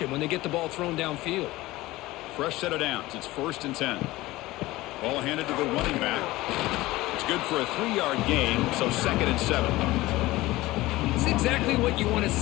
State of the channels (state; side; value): quieter; right; 18.5 dB